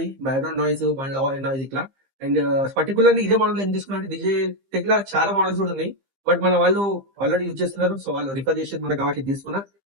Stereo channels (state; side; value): late; left; 15 ms